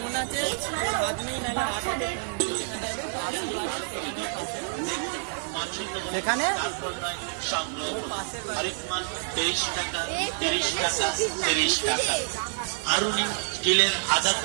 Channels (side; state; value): left; silent; 59 dB below the other